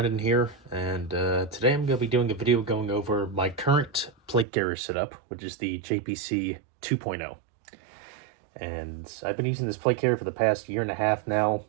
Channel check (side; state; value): left; drops out; at 4.5 s